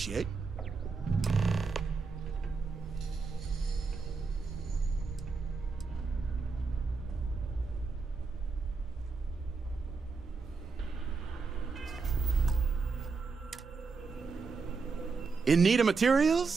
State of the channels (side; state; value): left; quieter; 4.6 dB